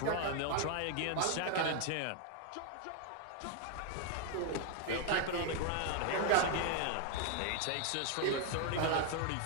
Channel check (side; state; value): both; different; correlation 0.00